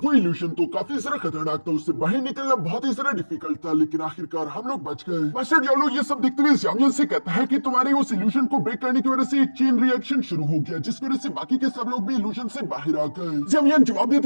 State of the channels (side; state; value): both; inverted; correlation -1.00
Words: वो इल्यूजन तो काफी ज्यादा खतरनाक था, उससे बाहर निकलना बहुत ही ज्यादा डिफिकल्ट था, लेकिन आखिरकार हम लोग बच गए। मास्टर डियाब्लो ये सब देखते हुए ज़ामियन से कहता है कि तुम्हारे उस इल्यूजन को ब्रेक करने की वजह से एक चेन रिएक्शन शुरू हो गया, जिसकी वजह से बाकी के सब लोग भी इल्यूजन से बाहर आ गए। ज़ामियन जवाब